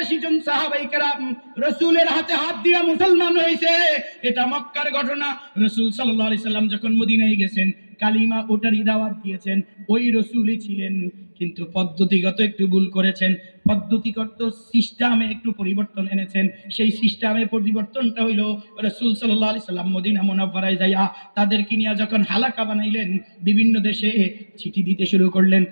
জন সাহাবায়ে কেরাম রাসূলের হাতে হাত দিয়া মুসলমান হয়েছে। এটা মক্কার ঘটনা। রাসূল সাল্লাল্লাহু আলাইহি সাল্লাম যখন মদিনায় গেছেন, কালিমা ওটারই দাওয়াত দিয়েছেন, ওই রাসূলই ছিলেন, কিন্তু পদ্ধতিগত একটু ভুল করেছেন। পদ্ধতিগত সিস্টেমে একটু পরিবর্তন এনেছেন। সেই সিস্টেমে পরিবর্তনটা হইল, রাসূল সাল্লাল্লাহু আলাইহি সাল্লাম মদিনা মুনাওয়ারায় যাইয়া তাদেরকে নিয়ে যখন হালাকা বানাইলেন, বিভিন্ন দেশে চিঠি দিতে শুরু করলেন।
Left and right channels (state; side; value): inverted; both; correlation -1.00